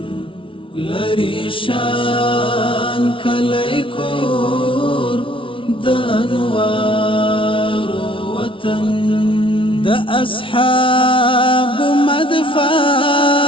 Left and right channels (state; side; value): late; right; 0.25 ms